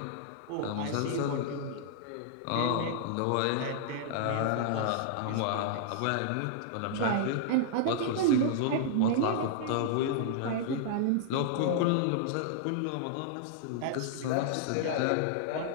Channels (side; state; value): both; different; correlation -0.01